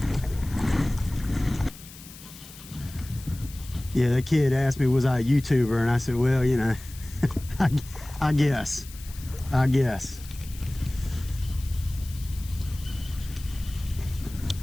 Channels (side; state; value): left; noise; hiss, 18 dB below the sound